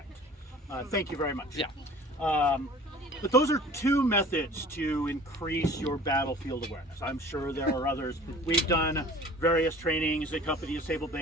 Thank you very much. Yeah. But those are 2 methods to increase your battlefield awareness. I'm sure there are others. We've done various trainings at Company Sable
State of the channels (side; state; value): both; normal; correlation 0.46